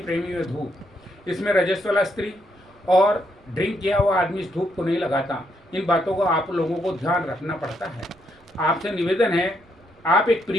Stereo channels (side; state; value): right; noise; rumble, 29 dB below the sound